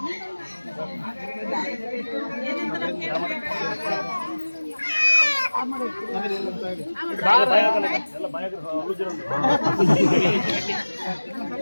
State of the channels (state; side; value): inverted; both; correlation -1.00